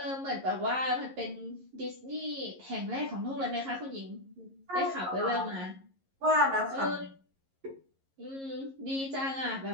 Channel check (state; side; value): late; left; 11 ms